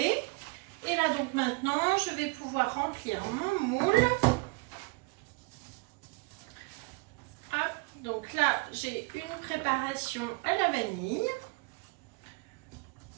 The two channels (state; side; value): quieter; left; 29.1 dB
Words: Et là donc maintenant, je vais pouvoir remplir mon moule. Hop, donc là, j'ai une préparation à la vanille.